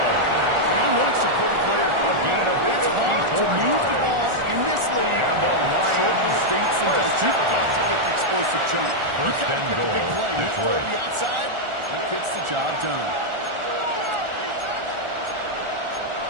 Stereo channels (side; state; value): left; late; 1.4 ms